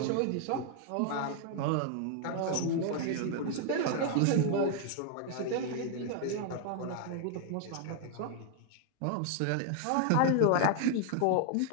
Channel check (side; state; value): both; different; correlation 0.00